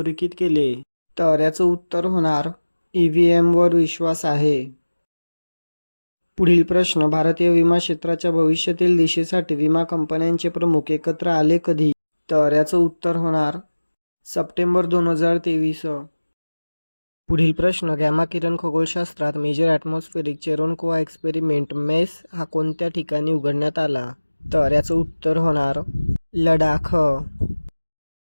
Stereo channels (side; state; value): both; inverted; correlation -1.00